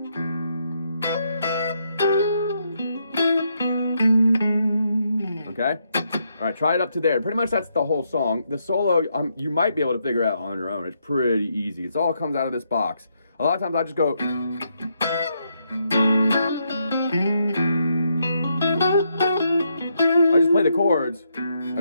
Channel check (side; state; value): both; inverted; correlation -0.78